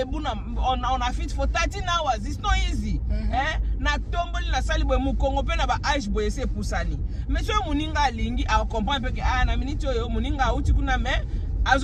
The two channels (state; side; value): identical; both; correlation 1.00